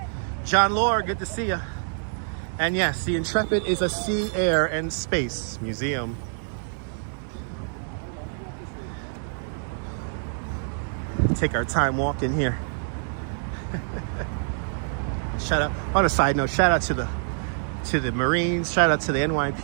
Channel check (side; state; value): left; silent; 61 dB below the other